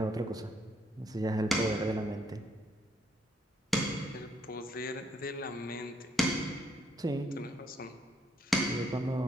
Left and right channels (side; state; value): both; normal; correlation 0.71